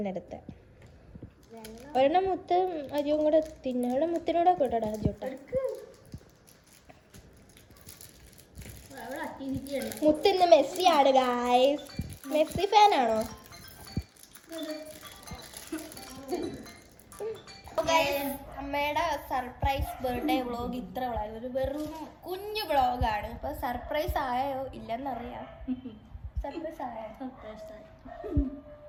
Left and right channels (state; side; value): identical; both; correlation 1.00